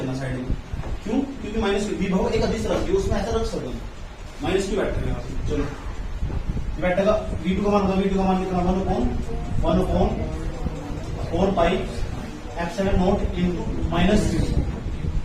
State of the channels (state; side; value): identical; both; correlation 1.00